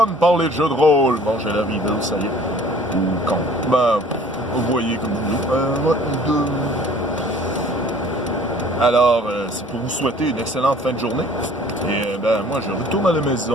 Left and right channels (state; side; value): normal; both; correlation 0.51